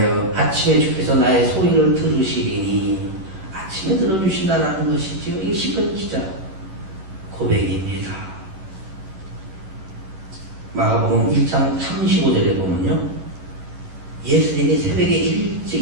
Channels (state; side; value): late; left; 10 ms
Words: 아침에 주께서 나의 소리를 들으시리니 아침에 들어주신다는 것이지요. 이 시편 기자 고백입니다. 마가복음 1장 35절에 보면요, 예수님이 새벽에